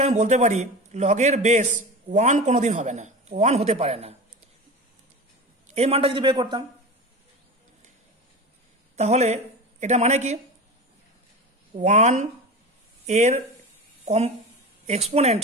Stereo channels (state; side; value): normal; both; correlation 0.29